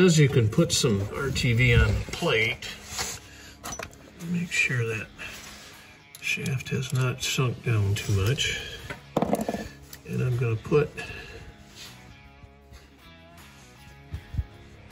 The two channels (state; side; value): identical; both; correlation 1.00